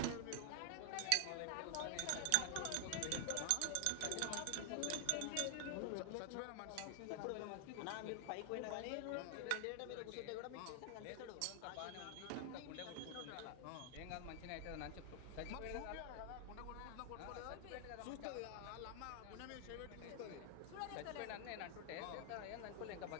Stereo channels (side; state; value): both; different; correlation 0.00